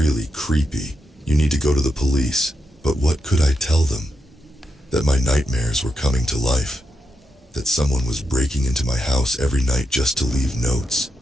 creepy. You need to go to the police." But what could I tell them? That my nightmares were coming to life. That someone was breaking into my house every night just to leave notes.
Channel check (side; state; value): both; normal; correlation 0.84